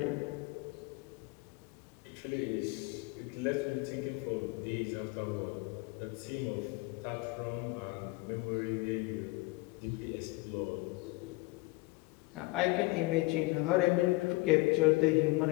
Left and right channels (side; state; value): right; quieter; 23.4 dB